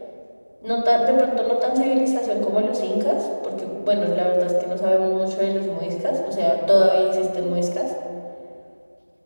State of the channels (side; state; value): both; inverted; correlation -1.00